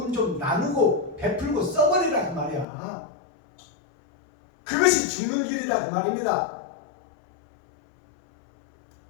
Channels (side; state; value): right; drops out; at 2.7 s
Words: 좀 나누고 베풀고 써버리라 그 말이야. 그것이 죽는 길이다 그 말입니다.